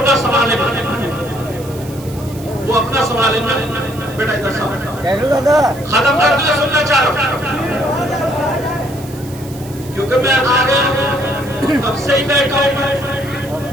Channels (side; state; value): right; noise; hiss, 19 dB below the sound